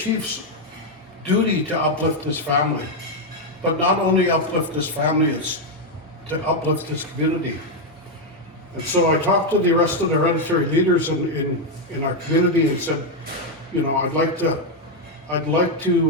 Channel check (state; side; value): normal; both; correlation 0.03